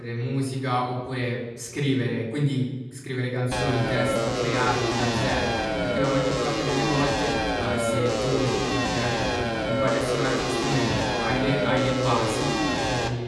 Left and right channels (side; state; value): both; identical; correlation 1.00